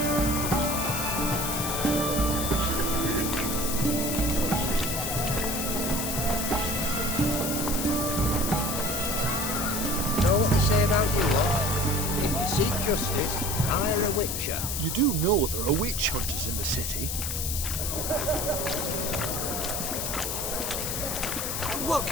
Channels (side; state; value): left; noise; hiss, 2 dB below the sound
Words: Know what they say about you lot? If you seek justice, hire a witcher. You do know there are witch hunters in the city. What